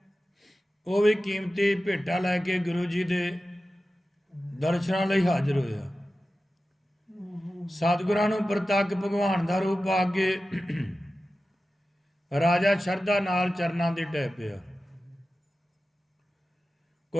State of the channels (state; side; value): normal; both; correlation 0.94